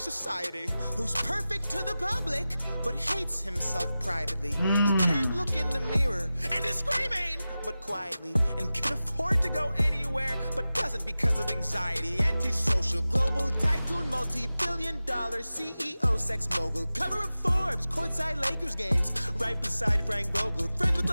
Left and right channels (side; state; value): both; inverted; correlation -0.95